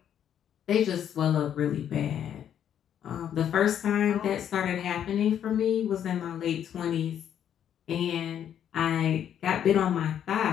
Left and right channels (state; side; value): quieter; right; 9.6 dB